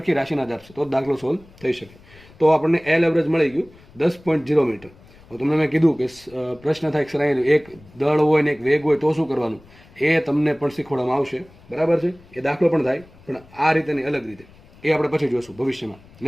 રાશિના જ આપશે, તો જ દાખલો સોલ્વ થઈ શકે. તો આપણને એલ એવરેજ મળી ગયું 10.0 મીટર. તમને મેં કીધું કે પ્રશ્ન થાય સર એક દળ હોય ને એક વેગ હોય તો શું કરવાનું, એ તમને પણ શીખવાડવામાં આવશે, બરાબર છે? એ દાખલો પણ થાય, પણ આ રીતે નહીં, અલગ રીતે. એ આપણે પછી જોઈશું ભવિષ્યમાં,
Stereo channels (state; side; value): noise; left; rumble, 25 dB below the sound